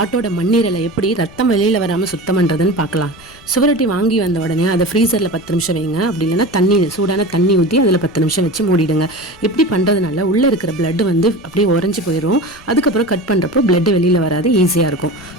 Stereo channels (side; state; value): left; noise; rumble, 23 dB below the sound